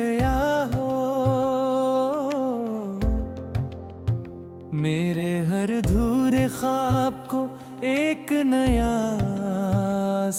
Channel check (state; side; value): identical; both; correlation 1.00